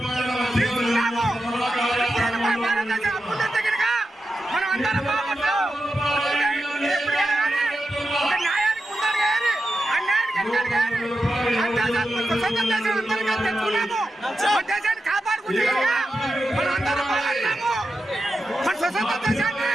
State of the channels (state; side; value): normal; both; correlation 0.89